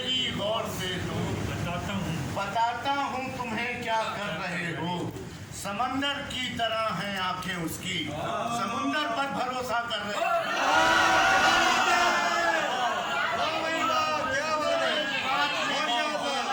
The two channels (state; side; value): identical; both; correlation 1.00